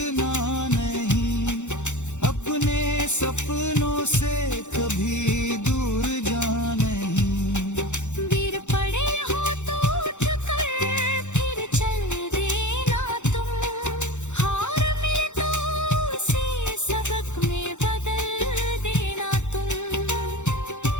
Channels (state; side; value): late; right; 0.84 ms